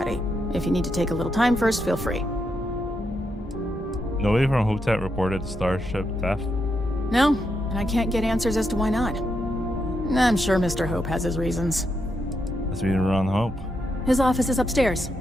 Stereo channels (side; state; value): both; normal; correlation 0.82